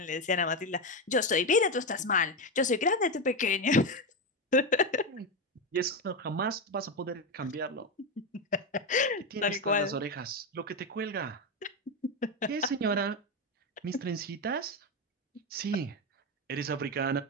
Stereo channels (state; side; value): normal; both; correlation 0.12